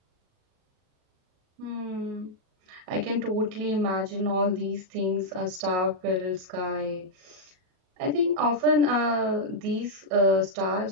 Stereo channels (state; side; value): late; left; 38 ms